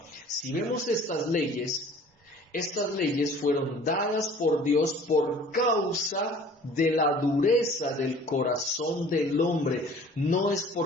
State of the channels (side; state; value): both; normal; correlation 0.49